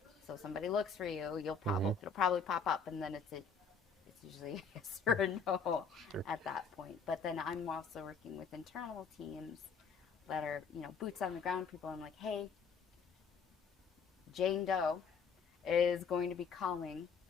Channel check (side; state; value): right; quieter; 5.5 dB